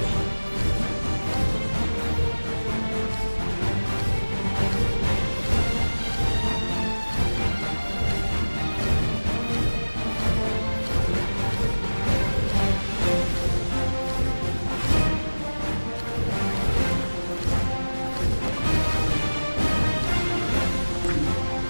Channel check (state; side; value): inverted; both; correlation -1.00